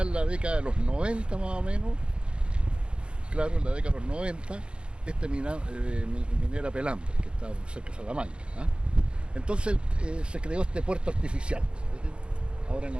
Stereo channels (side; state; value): left; late; 0.055 ms